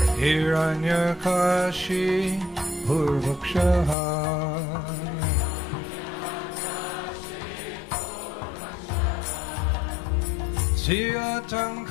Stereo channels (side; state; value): right; drops out; at 4.0 s